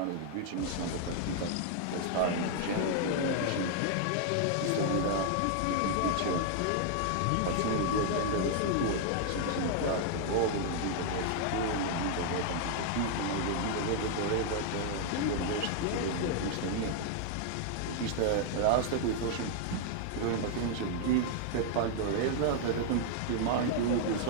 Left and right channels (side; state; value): both; different; correlation 0.00